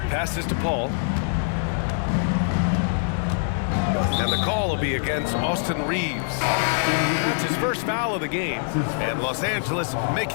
to Paul. And the call will be against Austin Reeves. That's his first foul of the game. And Los Angeles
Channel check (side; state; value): right; silent; 56 dB below the other